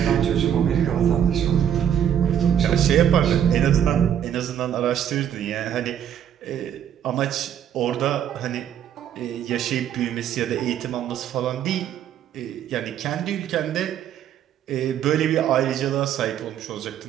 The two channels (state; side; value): quieter; left; 9.6 dB